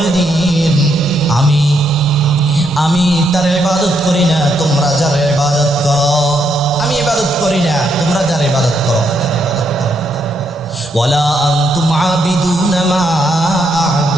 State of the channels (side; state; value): both; normal; correlation 0.76